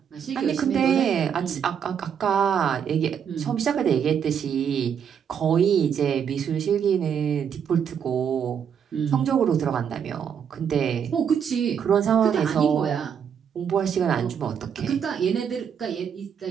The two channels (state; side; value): quieter; left; 7.8 dB